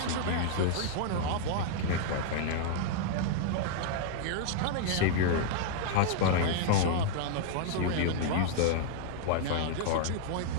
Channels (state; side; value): different; both; correlation 0.00